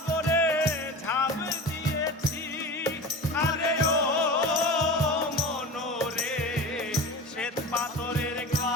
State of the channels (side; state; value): both; normal; correlation 0.32